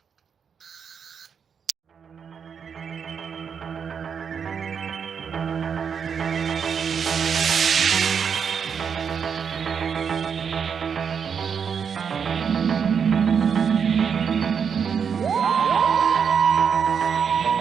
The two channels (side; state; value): left; quieter; 6.9 dB